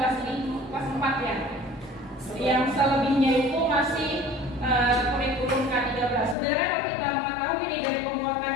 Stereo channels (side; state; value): right; drops out; at 6.4 s